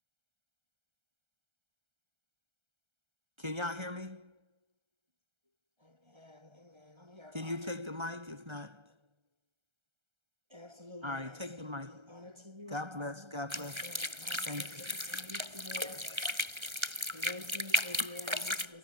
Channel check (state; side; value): late; left; 1.3 ms